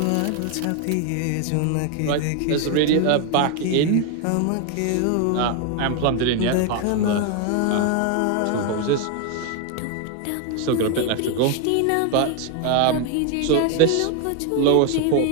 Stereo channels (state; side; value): different; both; correlation 0.01